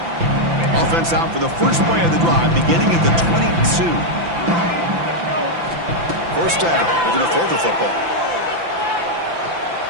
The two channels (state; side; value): late; left; 5.9 ms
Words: Offense out for the first play of the drive, beginning at the 22. First down. We're going to throw the football.